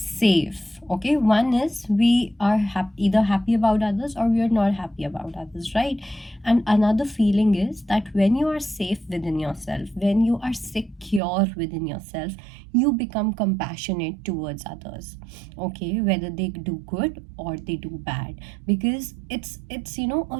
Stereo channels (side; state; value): left; drops out; at 11.2 s